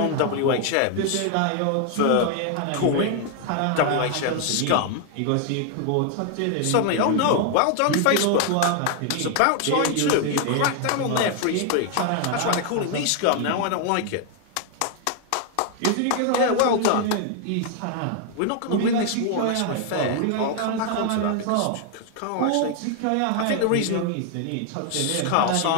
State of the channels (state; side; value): different; both; correlation 0.00